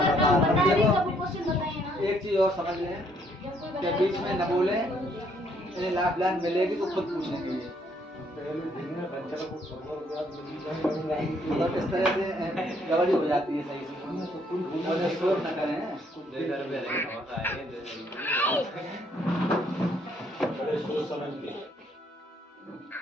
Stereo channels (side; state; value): both; normal; correlation 0.68